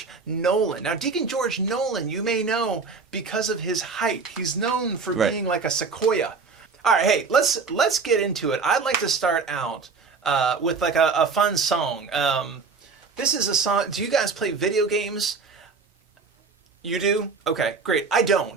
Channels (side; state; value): left; quieter; 4.8 dB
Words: Nolan. Now, Deacon George Nolan, you may know because of his height. He's known for being like a sequoia. All right, hey, let's get into it. I'd like to start out with like a fun song. This is a song. Do you guys play video games? You do? Okay, great. I